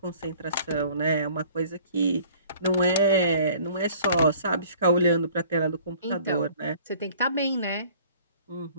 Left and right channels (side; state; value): both; inverted; correlation -0.52